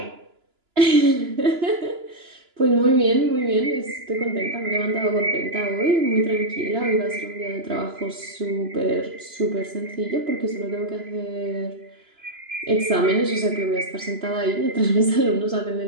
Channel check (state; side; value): late; left; 2.9 ms